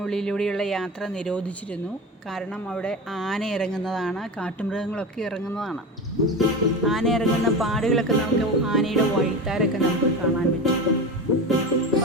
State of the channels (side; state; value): both; normal; correlation 0.26